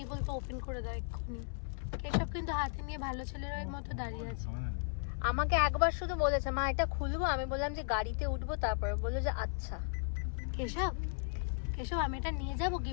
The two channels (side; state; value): right; silent; 54 dB below the other